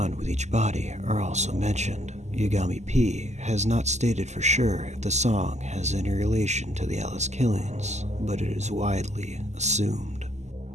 with each body are also mentioned. Yagami P has not stated for sure if the song has any relation to the Alice killings, but it is widely assumed.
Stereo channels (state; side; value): late; left; 0.33 ms